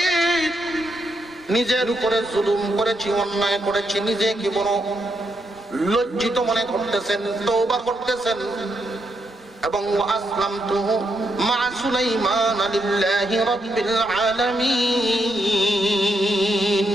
নিজের উপরে জুলুম করেছি, অন্যায় করেছি। নিজেকে বড় লজ্জিত মনে করতেছেন, তওবা করতেছেন এবং আসলামতু মা সুলাইমান লিল্লাহি রাব্বিল আলামিন,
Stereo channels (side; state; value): both; normal; correlation 0.80